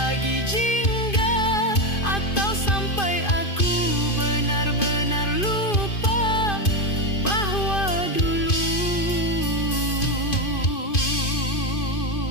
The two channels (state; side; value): late; right; 2.5 ms